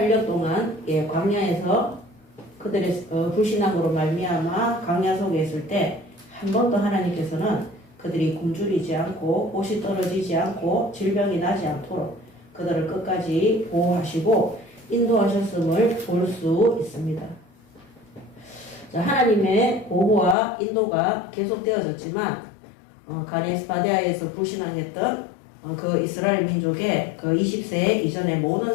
동안 광야에서 그들의 불신앙으로 말미암아 광야 속에 있을 때 한 번도 하나님께서는 그들이 굶주리지 않고 옷이 떨어지지 않고 질병이 나지 않도록 그들을 끝까지 보호하시고 인도하셨음을 볼 수 있습니다. 자, 하나님의 보호와 인도가 계속되어졌지만 가데스 바네아에서 불신앙했던 그 이스라엘 민족의 그 20세 이전의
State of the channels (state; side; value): drops out; right; at 20.4 s